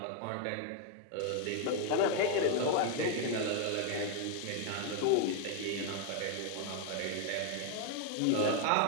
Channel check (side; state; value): both; different; correlation 0.00